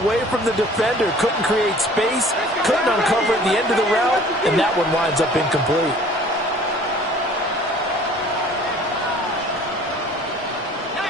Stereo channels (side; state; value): both; normal; correlation 0.50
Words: away from the defender. Couldn't create space, couldn't uncover at the end of the route, and that one winds up incomplete.